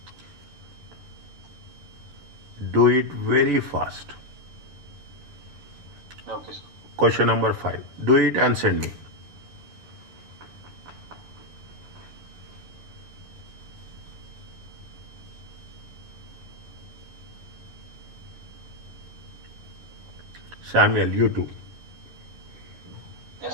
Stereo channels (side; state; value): left; late; 11 ms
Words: Do it very fast. Okay, sir. Question number 5. Do it and send me. Samuel, you too.